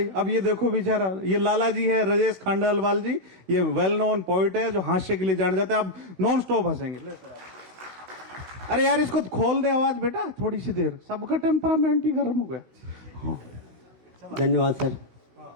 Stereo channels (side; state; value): left; late; 16 ms